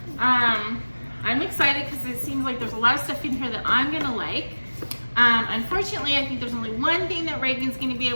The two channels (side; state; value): both; inverted; correlation -1.00